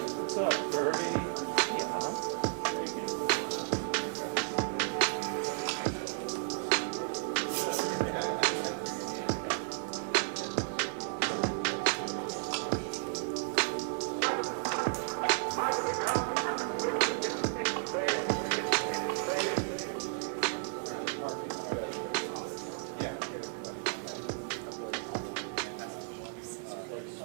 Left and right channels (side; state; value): left; silent; 55 dB below the other